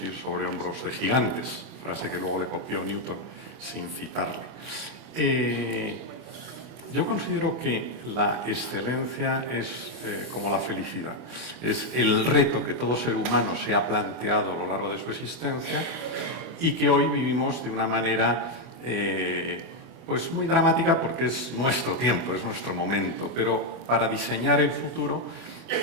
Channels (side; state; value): left; late; 24 ms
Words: ir sobre hombros de gigantes, frase que luego le copió Newton sin citarle. Yo considero que la excelencia es como la felicidad. Es el reto que todo ser humano se ha planteado a lo largo de su existencia y que hoy vivimos de una manera pues muy dramática porque es nuestro tiempo, es nuestro momento. Pero para diseñar el futuro